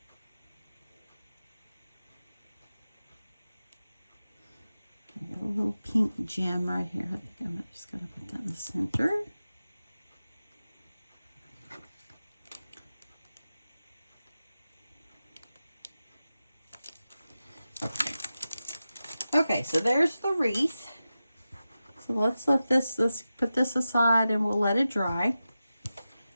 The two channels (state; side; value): inverted; both; correlation -0.93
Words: A little pink gem right here. I think I'm just going to put that in the center. Okay, so there's the wreath. So let's put this aside and we'll let it dry.